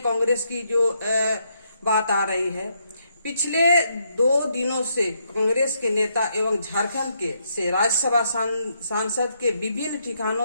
कांग्रेस की जो बात आ रही है। पिछले 2 दिनों से कांग्रेस के नेता एवं झारखंड के से राज्यसभा सांसद के विभिन्न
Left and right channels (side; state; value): both; inverted; correlation -0.76